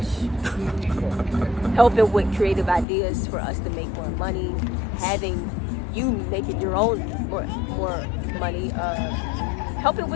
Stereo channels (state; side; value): drops out; right; at 2.9 s